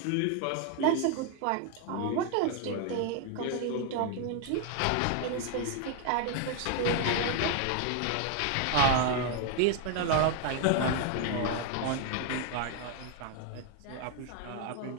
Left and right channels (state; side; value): different; both; correlation 0.01